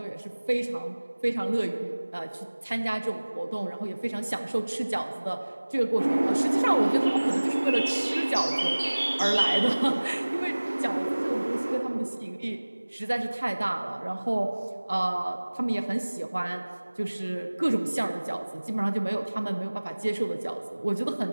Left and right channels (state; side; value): inverted; both; correlation -1.00